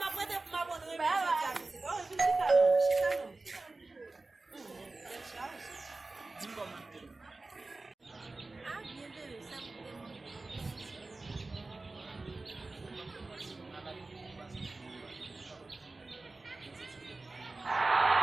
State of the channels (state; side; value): quieter; left; 3.3 dB